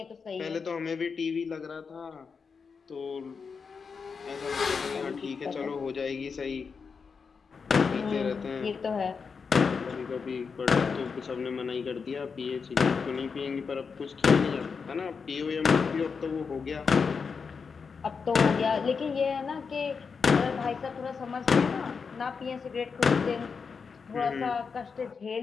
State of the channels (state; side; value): quieter; right; 5.5 dB